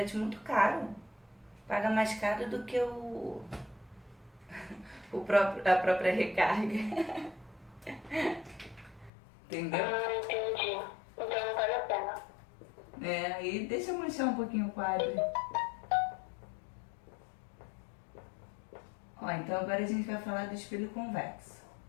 muito caro. Paga mais caro do que a própria recarga. Entendeu? Entendi. Então não vale a pena. Aí deixa eu manchar um pouquinho o quadro. Ó, então agora a gente vai falar do espelho convexo,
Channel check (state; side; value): drops out; right; at 9.1 s